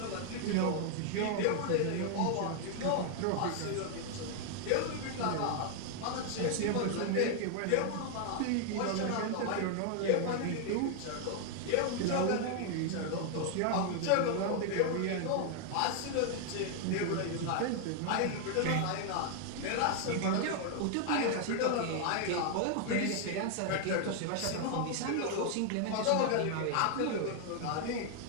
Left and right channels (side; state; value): both; different; correlation 0.00